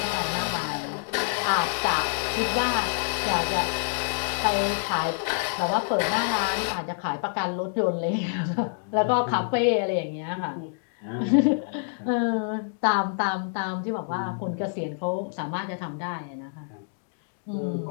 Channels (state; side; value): silent; right; digital silence